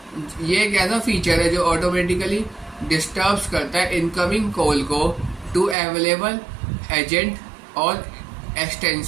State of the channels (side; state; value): left; drops out; at 5.8 s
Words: ये एक ऐसा फीचर है जो ऑटोमेटिकली डिस्टर्ब्स करता है इनकमिंग कॉल को टू अवेलेबल एजेंट और